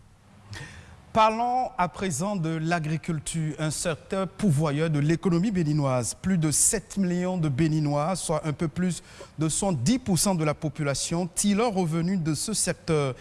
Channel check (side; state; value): both; identical; correlation 1.00